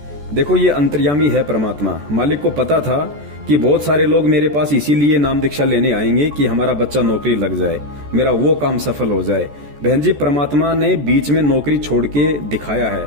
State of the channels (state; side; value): late; left; 14 ms